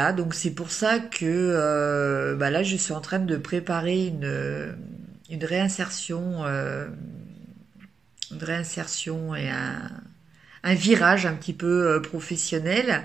donc c'est pour ça que là, je suis en train de préparer une réinsertion, et un virage un petit peu professionnel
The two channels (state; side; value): quieter; left; 5.6 dB